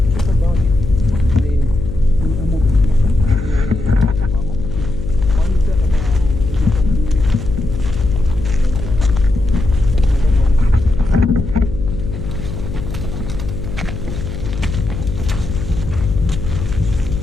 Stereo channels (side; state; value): left; noise; hum, 7 dB below the sound